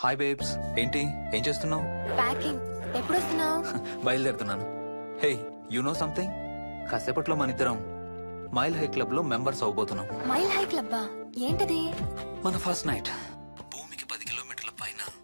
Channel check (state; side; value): inverted; both; correlation -1.00